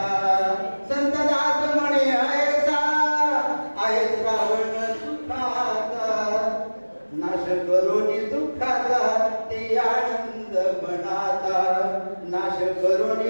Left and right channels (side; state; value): both; inverted; correlation -1.00